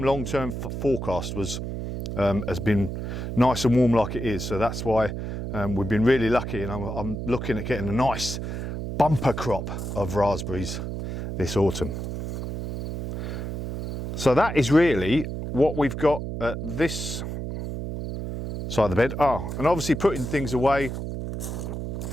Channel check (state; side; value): noise; right; hum, 5 dB below the sound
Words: long-term forecast has been nice and warm like it is, so that's why we've been really lucky, and I'm looking at getting a nice bumper crop of raspberries this autumn. So that is really what we've got at this side of the bed. Oh, and obviously putting things away,